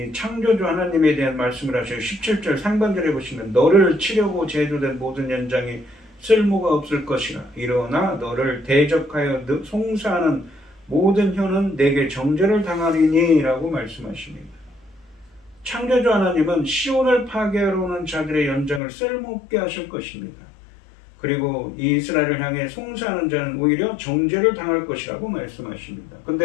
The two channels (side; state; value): right; drops out; at 18.8 s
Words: 창조주 하나님에 대한 말씀을 하셔요. 17절 상반절에 보시면 너를 치려고 제조된 모든 연장이 쓸모가 없을 것이라. 일어나 너를 대적하여 송사하는 모든 혀는 내게 정죄를 당하리니 라고 말씀하십니다. 창조주 하나님은 시온을 파괴하러 오는 자들의 연장을 쓸모없게 하실 것입니다. 그리고 이 이스라엘을 향해 송사하는 자는 오히려 정죄를 당할 것이라고 말씀하십니다.